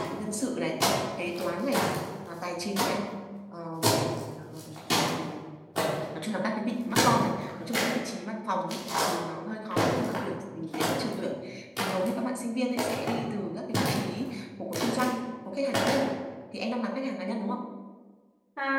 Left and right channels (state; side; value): identical; both; correlation 1.00